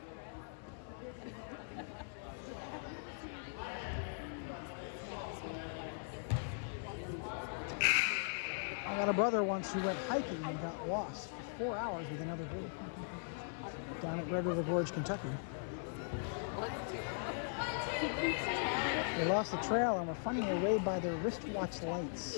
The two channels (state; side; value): silent; right; digital silence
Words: I got a brother once who went hiking and got lost for 4 hours with another group down at Red River Gorge, Kentucky. They lost the trail and were finding their way by their wristwatch